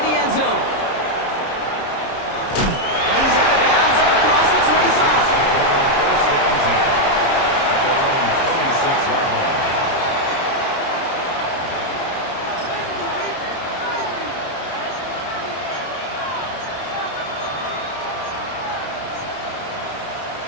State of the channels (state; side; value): late; right; 30 ms